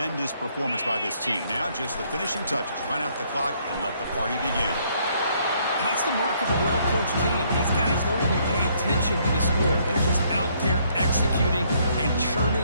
performance by this team. Now just the finishing touches. Run out the clock and let the party begin. That's the mark of a well-coached team. These guys don't even pay attention to the score. They're just out there executing and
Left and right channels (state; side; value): inverted; both; correlation -0.68